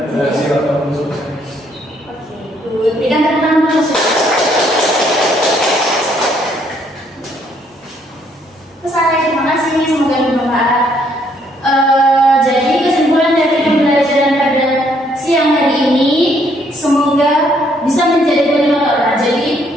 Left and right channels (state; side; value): normal; both; correlation 0.68